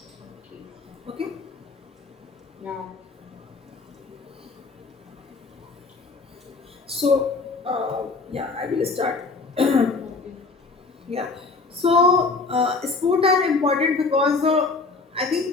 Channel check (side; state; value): right; quieter; 4.0 dB